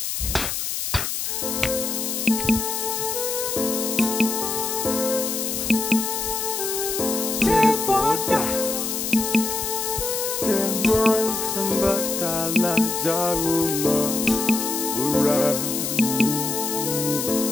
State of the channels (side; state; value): left; noise; hiss, 2 dB below the sound